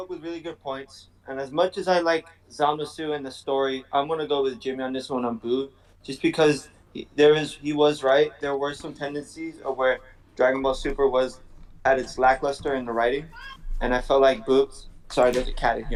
with really good points, and as much as I like Zamasu and the story, I'm gonna go with Jimmy on this one on Boo, just because he was right. There were some tendencies of where Dragon Ball Super was at its lackluster in the writing, and I felt like Boo. Sorry, there's a cat in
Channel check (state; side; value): identical; both; correlation 1.00